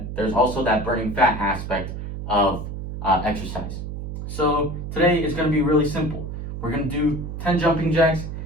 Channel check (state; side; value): noise; right; hum, 7 dB below the sound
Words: there's also that burning fat aspect of exercise. So today is going to be really simple. We're going to do 10 jumping jacks,